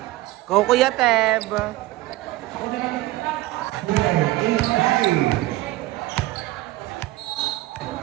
Go Kuya Teb!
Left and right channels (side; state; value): left; quieter; 17.9 dB